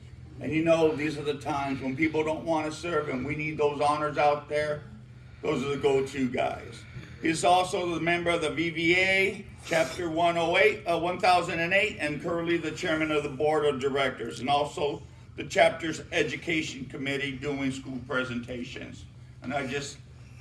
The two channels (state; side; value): identical; both; correlation 1.00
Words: And you know, these are the times when people don't want to serve, and we need those honors out there. Those are the go-to guys. He's also the member of the VVA, Chapter 1008, and currently the chairman of the board of directors, and also the chapter's education committee doing school presentations. And I just